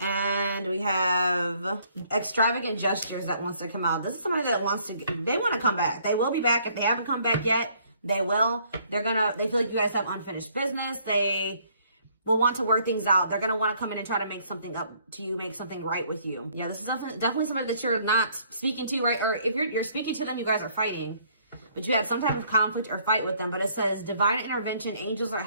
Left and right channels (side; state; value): both; inverted; correlation -0.64